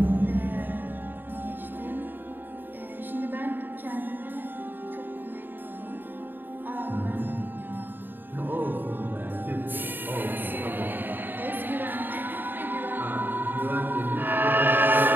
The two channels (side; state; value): left; late; 0.093 ms